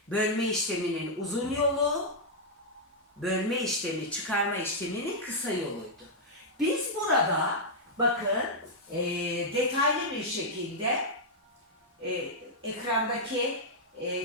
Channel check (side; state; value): both; normal; correlation -0.05